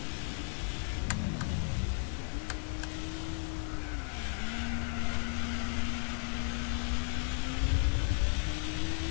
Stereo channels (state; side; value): silent; right; 55 dB below the other